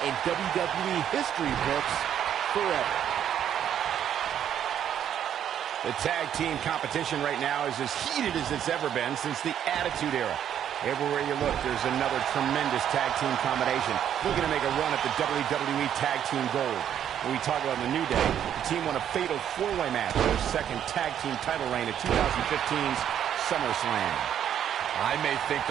in WWE history books forever. The tag team competition right now is as heated as it's ever been since the Attitude Era. Everywhere you look, there's another tremendous tag team combination looking to make a run at the WWE Tag Team Gold. When we talk about the New Day, the team won a fatal 4-way match for their second tag team title reign at 2015's SummerSlam. I may think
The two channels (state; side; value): quieter; left; 9.7 dB